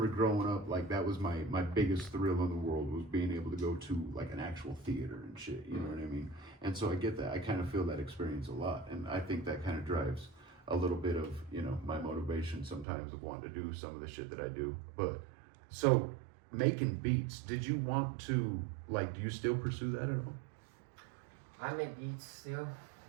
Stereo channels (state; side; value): drops out; left; at 12.9 s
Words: growing up, like, that was my biggest thrill in the world, was being able to go to like an actual theater and shit. You know what I mean? And so I get that. I kind of feel that experience a lot, and I think that kind of drives a little bit of, you know, my motivation sometimes of wanting to do some of the shit that I do. But so making beats, did you want to, like, do you still pursue that at all? I make beats still.